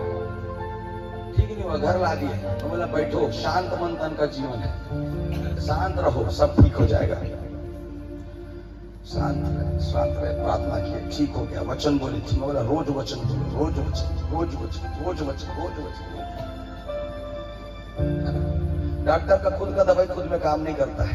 ठीक नहीं हुआ, घर ला दिए। तो बोला बैठो, शांत मन तन का जीवन है, शांत रहो, सब ठीक हो जाएगा। शांत रहे, प्रार्थना किए, ठीक हो गया। वचन बोले, ठीक। बोला रोज वचन बोलो, रोज वचन, रोज वचन, रोज वचन, रोज वचन। डॉक्टर का खुद का दवाई खुद में काम नहीं करता है,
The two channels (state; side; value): identical; both; correlation 1.00